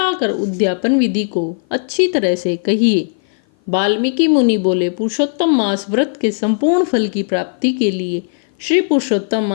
कर उद्यापन विधि को अच्छी तरह से कहिए। वाल्मीकि मुनि बोले, पुरुषोत्तम मास व्रत के संपूर्ण फल की प्राप्ति के लिए श्री पुरुषोत्तम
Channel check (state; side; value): silent; right; 56 dB below the other